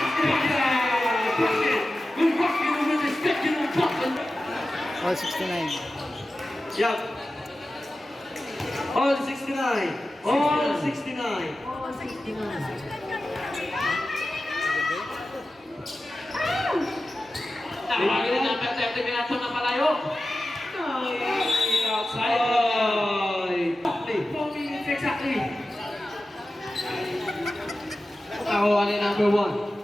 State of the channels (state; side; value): normal; both; correlation 0.94